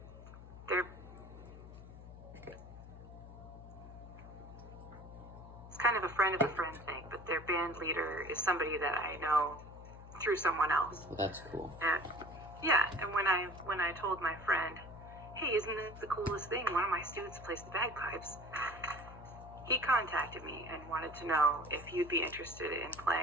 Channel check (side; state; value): left; noise; hum, 15 dB below the sound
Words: they're it's kind of a friend thing, but their band leader is somebody that I know through someone else. Well, that's cool. And and when I told my friend, hey, isn't this the coolest thing? One of my students plays the bagpipes. He contacted me and wanted to know if you'd be interested in